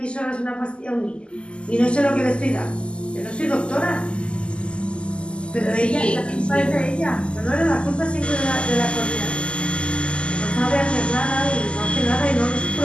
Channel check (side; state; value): right; late; 0.051 ms